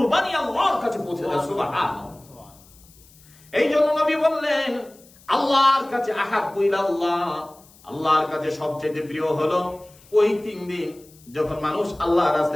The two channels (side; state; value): left; noise; hiss, 26 dB below the sound